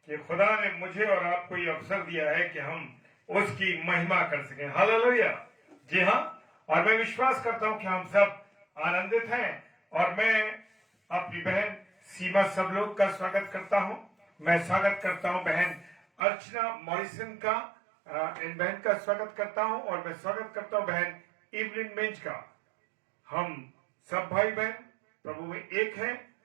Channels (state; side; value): drops out; left; at 16.2 s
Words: कि खुदा ने मुझे और आपको ये अवसर दिया है कि हम उसकी महिमा कर सकें। हालेलुया। जी हाँ, और मैं विश्वास करता हूं कि हम सब आनंदित हैं और मैं अपनी बहन सीमा सब लोग का स्वागत करता हूं। मैं स्वागत करता हूं बहन अर्चना मॉरिसन का, इन बहन का स्वागत करता हूं और मैं स्वागत करता हूं बहन इवलिन मिंज का। हम सब भाई बहन प्रभु में एक हैं